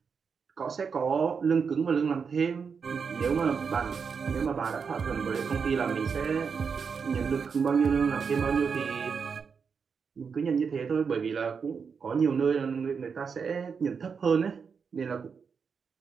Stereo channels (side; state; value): left; quieter; 5.9 dB